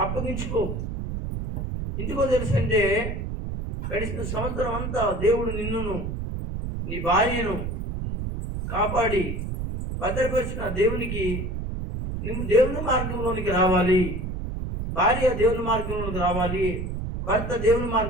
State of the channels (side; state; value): right; noise; rumble, 4 dB below the sound